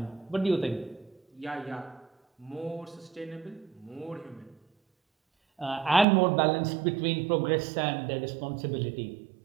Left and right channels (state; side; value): drops out; left; at 6.1 s